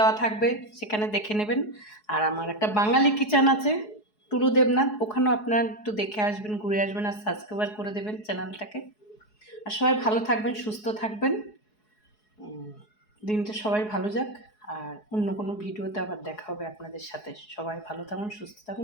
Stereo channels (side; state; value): right; late; 4.7 ms